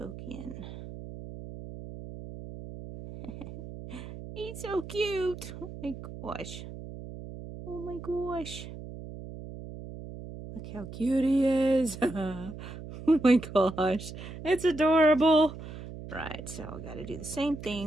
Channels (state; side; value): noise; right; hum, 11 dB below the sound